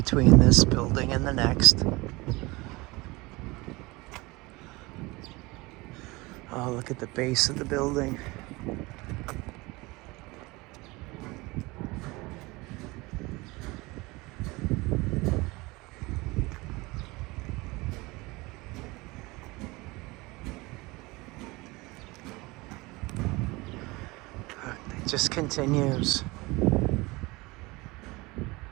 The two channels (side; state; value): left; quieter; 23.0 dB